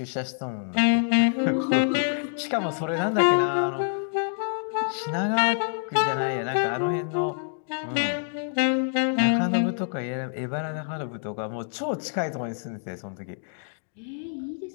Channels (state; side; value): silent; right; digital silence